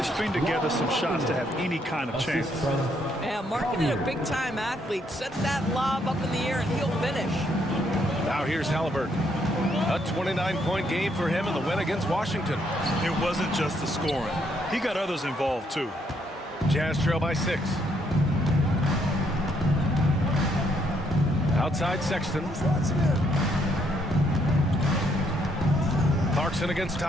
string together some shots to have any kind of chance. Yeah, Markkanen, a big-time athlete. Set that lob up in the air and he'll finish. Now here's Halliburton. A 29-point game for him in the win against Washington. It wasn't just the scoring. He got others involved, too. Jazz trail by 6. Outside Sexton. Clarkson against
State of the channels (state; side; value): normal; both; correlation 0.72